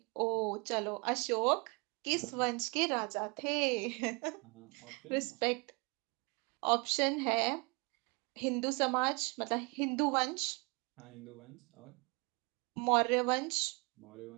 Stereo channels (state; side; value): quieter; left; 30.2 dB